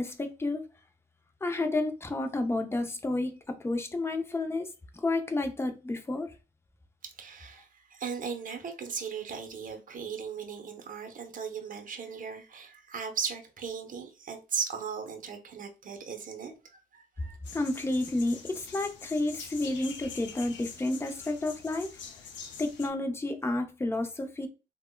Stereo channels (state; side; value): normal; both; correlation 0.75